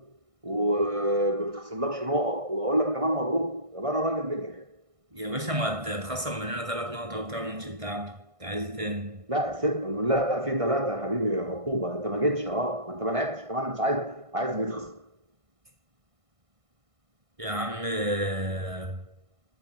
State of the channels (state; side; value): late; left; 1.6 ms